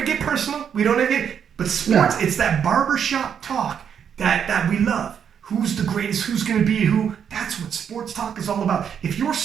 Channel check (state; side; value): quieter; left; 7.9 dB